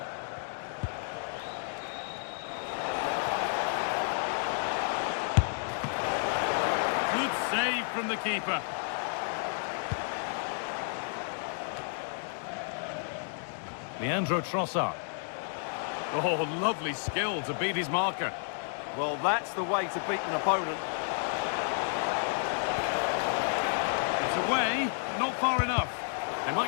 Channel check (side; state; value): right; silent; digital silence